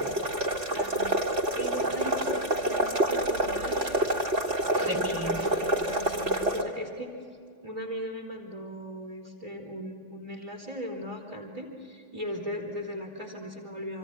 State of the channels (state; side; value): late; left; 4.1 ms